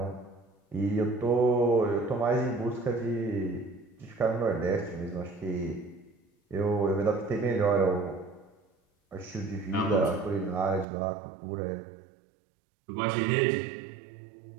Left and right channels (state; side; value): drops out; left; at 10.9 s